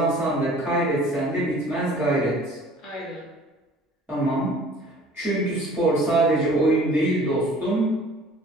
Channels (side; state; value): both; normal; correlation 0.50